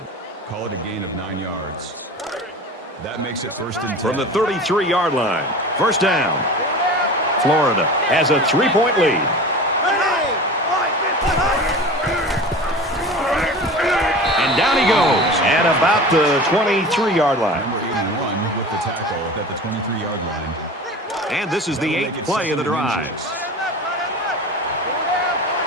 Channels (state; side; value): normal; both; correlation 0.35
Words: Call it a gain of 9 yards. That makes it first and 10. From the 33-yard line, first down. Florida has a 3-point lead. And down he goes at about the 23-yard line. Number 81 with the tackle at the 23-yard line. And this is the 8th play of the drive.